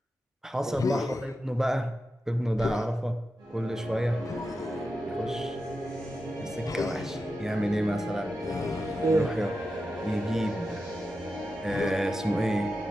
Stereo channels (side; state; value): both; normal; correlation 0.90